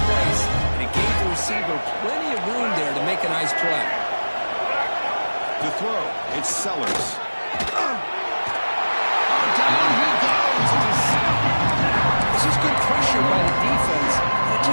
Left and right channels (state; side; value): inverted; both; correlation -1.00